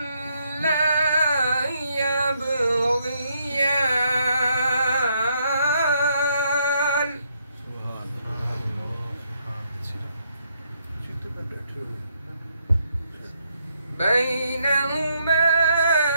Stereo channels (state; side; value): inverted; both; correlation -0.75